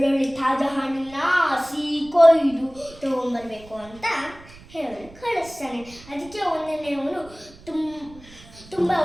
ತಾಜಾ ಹಣ್ಣನ್ನ ಕೊಯ್ದು ತಗೊಂಡ್ಬರ್ಬೇಕು ಅಂತ ಹೇಳಿ ಕಳಿಸ್ತಾನೆ. ಅದಕ್ಕೆ ಒಂದನೇ ಅವನು ತುಂಬ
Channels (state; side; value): noise; right; rumble, 22 dB below the sound